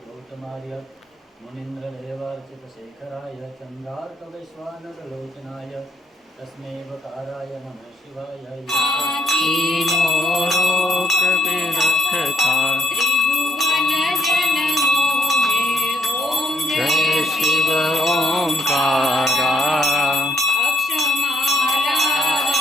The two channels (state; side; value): normal; both; correlation 0.72